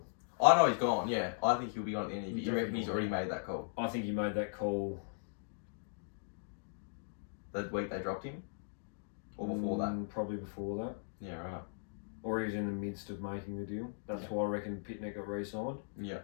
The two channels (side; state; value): right; silent; digital silence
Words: I know he's gone, yeah. I think he'll be gone at the end of the year. You reckon Definitely he's already made that call? I think he made that call The week they dropped him? Or before that? Probably before that. Yeah, right. Or he was in the midst of making the deal. That's why I reckon Pitnet got re-signed. Yeah.